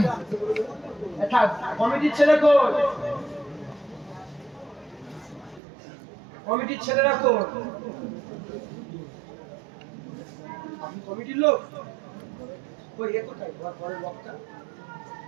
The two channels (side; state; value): left; drops out; at 5.6 s